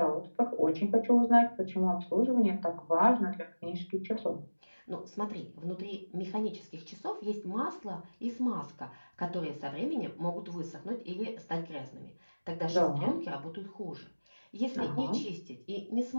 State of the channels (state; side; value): inverted; both; correlation -1.00